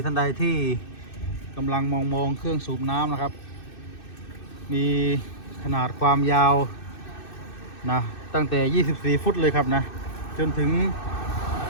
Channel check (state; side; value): late; right; 2.6 ms